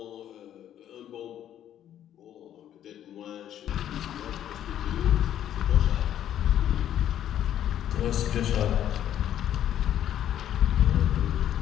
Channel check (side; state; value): right; quieter; 10.8 dB